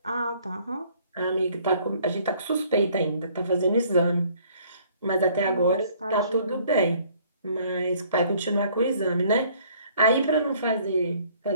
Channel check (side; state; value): both; inverted; correlation -0.59